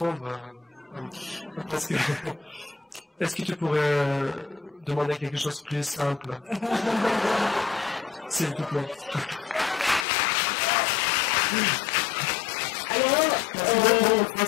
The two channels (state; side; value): drops out; right; at 10.1 s